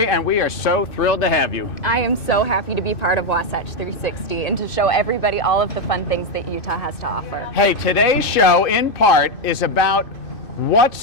and we are so thrilled to have you. I am so happy to be part of Wasatch 360 and to show everybody all of the fun things that Utah has to offer. Hey, today's show, in part, is about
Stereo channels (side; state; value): right; late; 2.6 ms